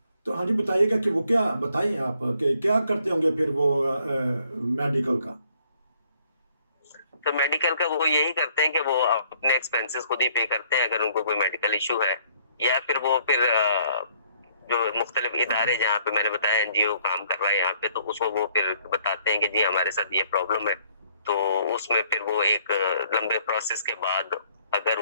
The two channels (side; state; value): both; inverted; correlation -0.63